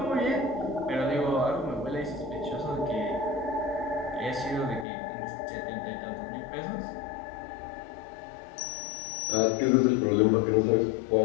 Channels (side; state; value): right; drops out; at 4.9 s